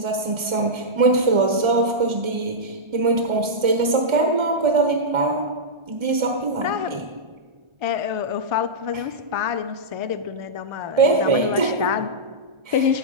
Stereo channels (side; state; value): left; late; 1.3 ms